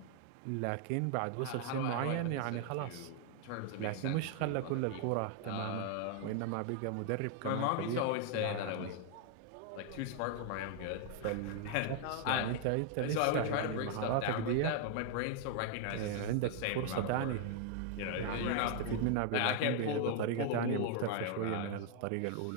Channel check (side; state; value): both; different; correlation 0.00